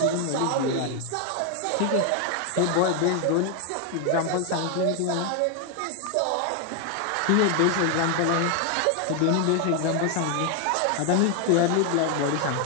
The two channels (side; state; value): both; different; correlation 0.01